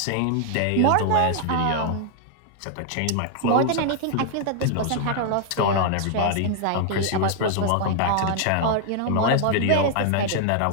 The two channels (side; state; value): both; different; correlation 0.00